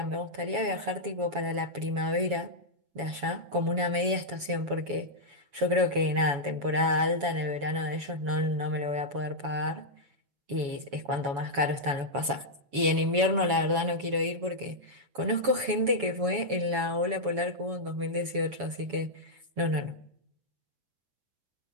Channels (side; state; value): left; late; 7.1 ms